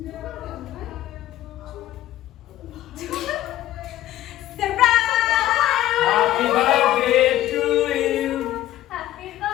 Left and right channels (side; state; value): right; quieter; 13.8 dB